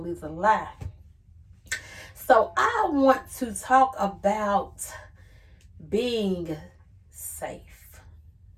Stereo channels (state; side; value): identical; both; correlation 1.00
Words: is a lie. So, I want to talk about being safe.